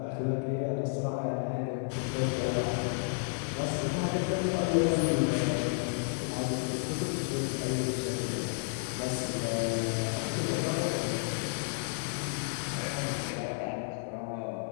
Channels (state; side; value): silent; right; 57 dB below the other